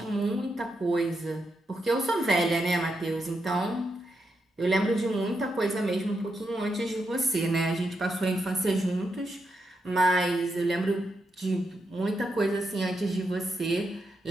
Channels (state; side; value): normal; both; correlation 0.83